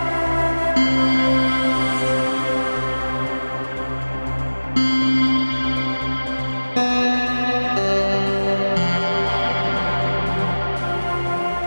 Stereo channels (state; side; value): inverted; both; correlation -1.00